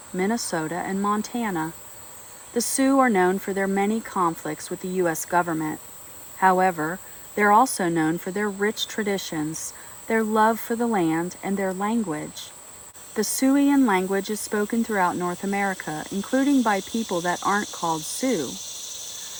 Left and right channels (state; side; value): identical; both; correlation 1.00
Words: Minnesota, and Montana. The Sioux are known for their many conflicts with the U.S. government. However, they're also known for their rich traditions, their love for the land, and their language. The Siouxian language is spoken throughout North America, including by people that aren't called Sioux.